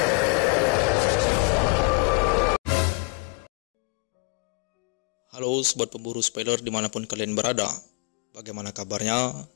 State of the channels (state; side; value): quieter; right; 34.8 dB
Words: Halo sobat pemburu spoiler dimanapun kalian berada. Bagaimana kabarnya?